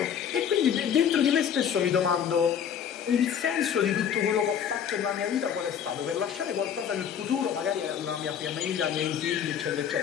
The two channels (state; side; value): quieter; right; 8.4 dB